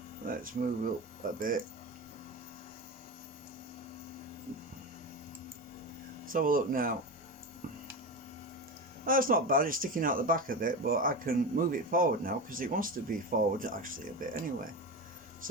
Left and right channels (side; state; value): both; normal; correlation 0.22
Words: Let's move up a bit. Let's have a look now. That's not bad, it's sticking out the back a bit, but I can move it forward now because it wants to be forward actually a bit anyway.